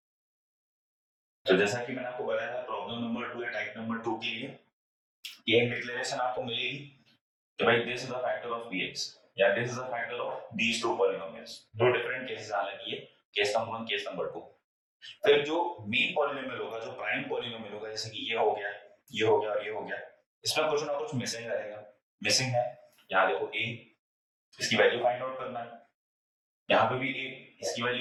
तो जैसा कि मैंने आपको बताया था problem number 2 या type number 2 के लिए ये डिक्लेरेशन आपको मिलेगी कि भाई this is the factor of bx या this is the factor of these two polynomials. दो डिफरेंट केसेस हालांकि ये केस नंबर 1 केस नंबर 2. फिर जो मेन पॉलिनोमियल होगा, जो प्राइम पॉलिनोमियल होगा, जैसे कि ये हो गया, ये हो गया और ये हो गया, इसमें कुछ ना कुछ मिसिंग रहेगा. मिसिंग है यहाँ देखो a, इसकी वैल्यू फाइंड आउट करना है. यहाँ पे भी a, इसकी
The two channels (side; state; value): both; identical; correlation 1.00